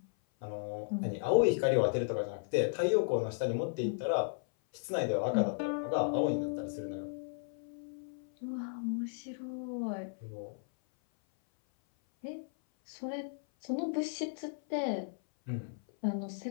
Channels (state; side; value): silent; right; 55 dB below the other